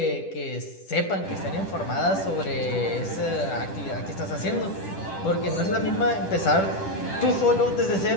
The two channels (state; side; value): late; right; 10 ms